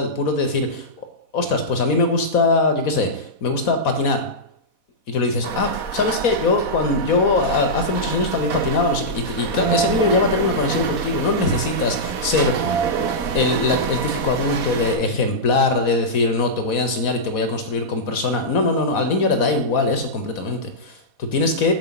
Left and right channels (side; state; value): right; late; 4.1 ms